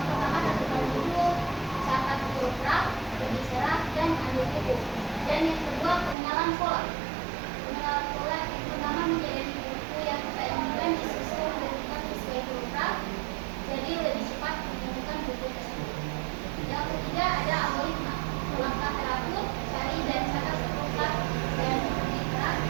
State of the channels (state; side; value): drops out; left; at 6.2 s